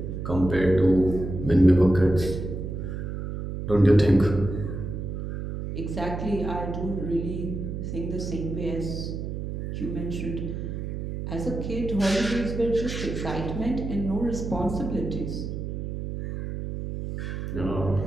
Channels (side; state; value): right; noise; hum, 5 dB below the sound